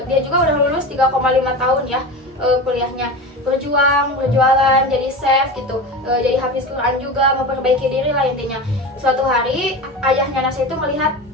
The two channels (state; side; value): normal; both; correlation 0.27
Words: Dia juga udah lulus 3,5 tahun ya kuliahnya, berjualan, jadi chef gitu, jadi hafiz Quran juga, memperbaiki diri lah intinya. Suatu hari ayahnya Nasya itu melihat